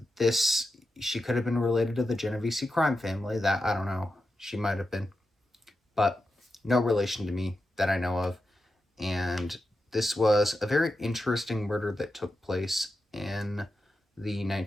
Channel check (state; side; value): normal; both; correlation 0.89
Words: She could have been related to the Genovese crime family. That, I don't know. She might have been. But no relation to me that I know of. And this was a very interesting murder that took place in the